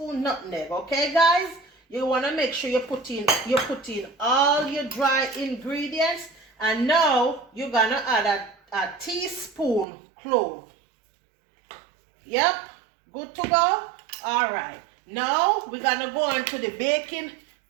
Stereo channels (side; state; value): left; drops out; at 9.9 s